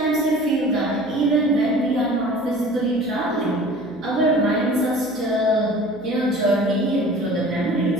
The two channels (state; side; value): noise; right; hum, 29 dB below the sound